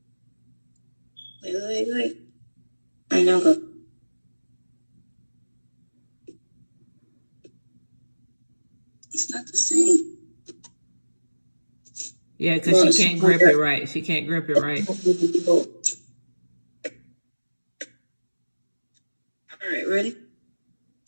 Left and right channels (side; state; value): both; inverted; correlation -1.00